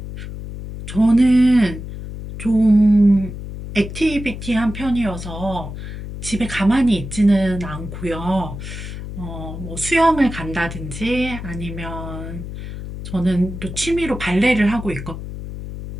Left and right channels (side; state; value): left; noise; hum, 9 dB below the sound